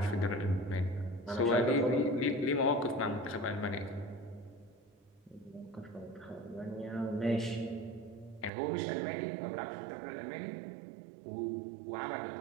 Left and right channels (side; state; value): left; drops out; at 8.5 s